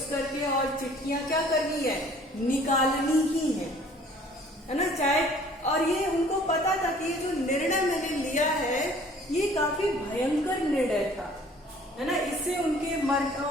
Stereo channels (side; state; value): both; normal; correlation 0.54